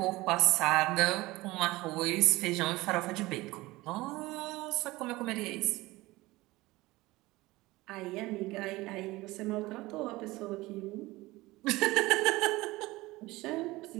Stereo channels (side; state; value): left; quieter; 20.0 dB